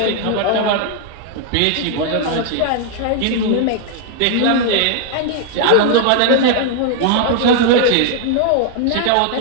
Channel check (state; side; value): different; both; correlation 0.00